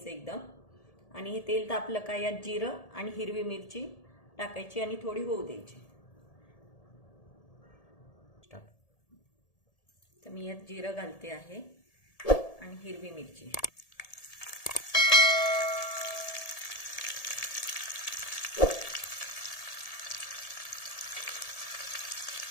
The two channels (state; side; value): late; right; 1.7 ms